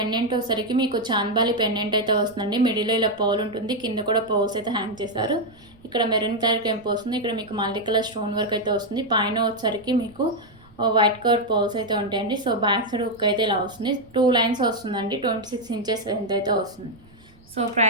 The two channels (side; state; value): right; noise; rumble, 27 dB below the sound